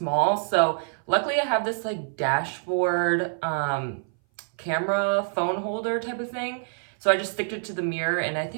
So luckily I have this like dashboard camera phone holder type of thing, so I just stick it to the mirror and I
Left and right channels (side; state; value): left; silent; 58 dB below the other